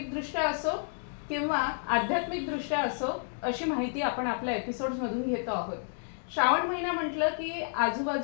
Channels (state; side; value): silent; right; digital silence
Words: असो किंवा आध्यात्मिकदृष्ट्या असो, अशी माहिती आपण आपल्या एपिसोड्समधून घेतो आहोत. श्रावण महिना म्हटलं की